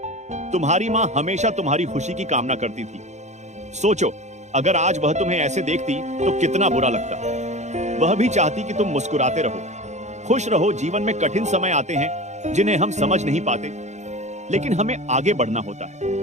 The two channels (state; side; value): late; left; 0.33 ms